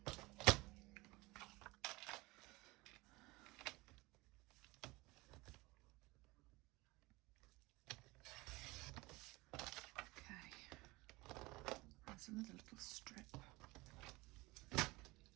Okay. There's another little strip.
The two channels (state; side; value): quieter; left; 22.4 dB